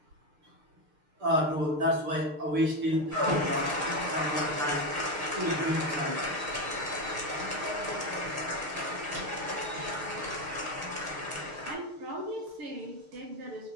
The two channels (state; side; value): late; left; 6.6 ms